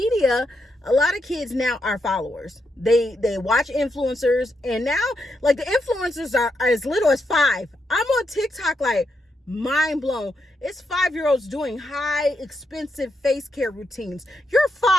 a lot of kids now are followers. They watch influencers. And now, the influencers are as little as 5. I'm on TikTok mind blown. It's 5-year-olds doing high expensive face care routines. You're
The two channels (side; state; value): both; normal; correlation 0.82